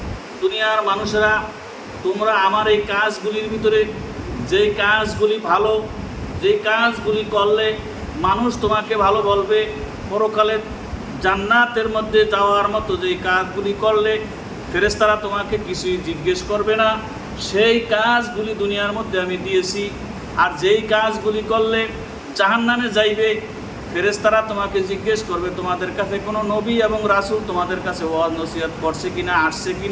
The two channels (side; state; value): both; identical; correlation 1.00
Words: দুনিয়ার মানুষেরা, তোমরা আমার এই কাজগুলির ভিতরে যেই কাজগুলি ভালো, যেই কাজগুলি করলে মানুষ তোমাকে ভালো বলবে, পরকালে জান্নাতের মধ্যে যাওয়ার মতো যেই কাজগুলি করলে ফেরেশতারা তোমাকে কিছুই জিজ্ঞেস করবে না, সেই কাজগুলি দুনিয়ার মধ্যে আমি দিয়েছি। আর যেই কাজগুলি করলে জাহান্নামে যাইবে, ফেরেশতারা তোমাকে জিজ্ঞেস করবে তোমাদের কাছে কোনো নবী এবং রাসূল তোমাদের কাছে ওয়াজ নসিহত করছে কিনা, আসছে